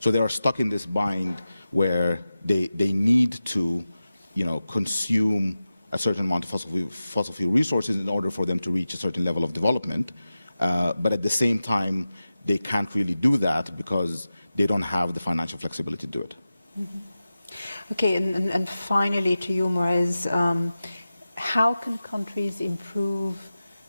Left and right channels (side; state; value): both; inverted; correlation -0.94